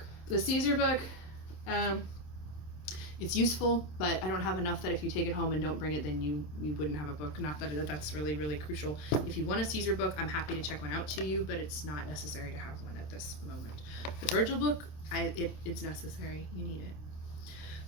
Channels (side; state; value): right; late; 27 ms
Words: The Caesar book, it's useful, but I don't have enough that if you take it home and don't bring it, then you wouldn't have a book. Not that that's really, really crucial. If you want a Caesar book, I'm happy to check one out to you, but it's not necessary to have one at this moment. The Virgil book, it's necessary. You need it.